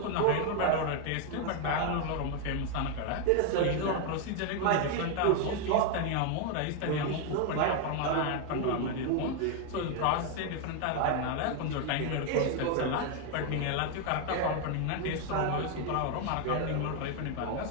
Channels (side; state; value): both; different; correlation 0.01